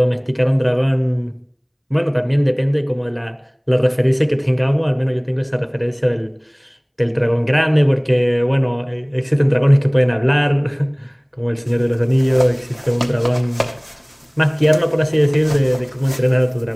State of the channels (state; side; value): identical; both; correlation 1.00